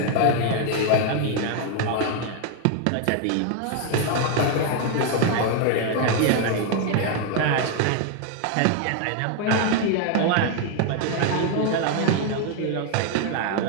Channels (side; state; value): both; different; correlation 0.00